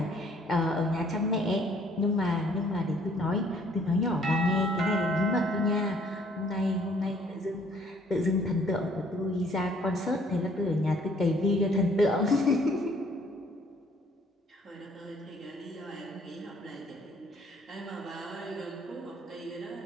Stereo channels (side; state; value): both; normal; correlation 0.61